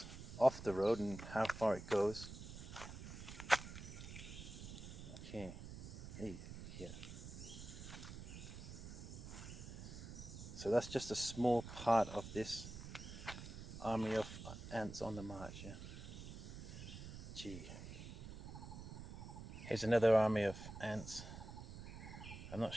off the road and how far it goes. Okay, hey, here. So that's just a small part of this army of ants on the march, yeah. Gee. Here's another army of ants. I'm not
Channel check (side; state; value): right; noise; rumble, 10 dB below the sound